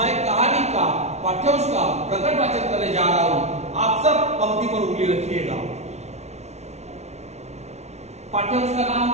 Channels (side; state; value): left; late; 0.32 ms